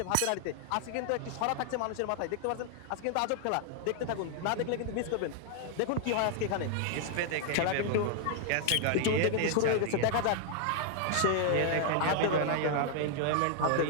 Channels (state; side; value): different; both; correlation 0.00